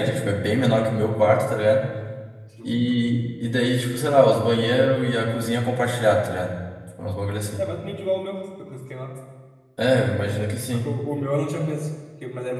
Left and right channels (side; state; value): both; identical; correlation 1.00